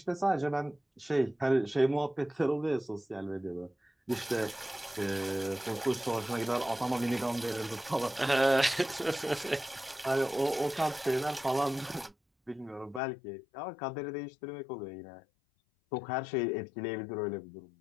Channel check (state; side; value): drops out; right; at 13.0 s